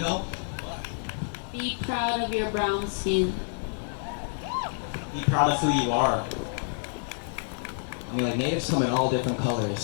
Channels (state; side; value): silent; right; digital silence